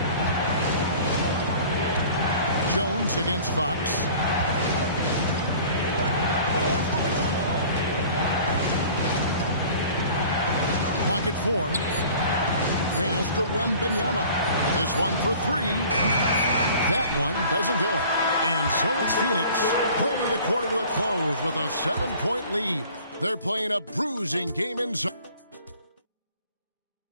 Jones against Fox. Pocket 4. Pass to Wembanyama. This one for 3. That one doesn't go. And so it's Phoenix bringing the quarter to a close with a 7-point lead. They're playing a bruising game in zone.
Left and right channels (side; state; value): both; inverted; correlation -0.47